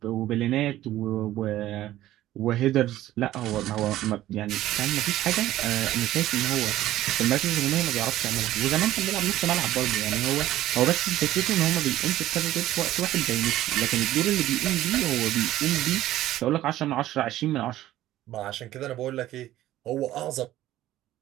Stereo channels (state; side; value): quieter; left; 14.3 dB